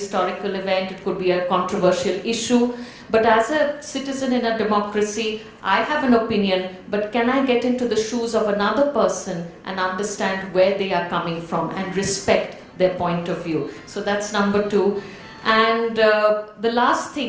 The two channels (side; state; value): both; identical; correlation 1.00